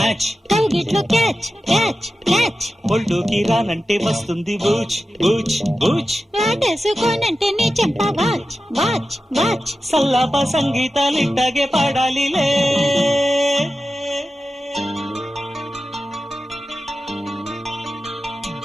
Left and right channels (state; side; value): normal; both; correlation 0.93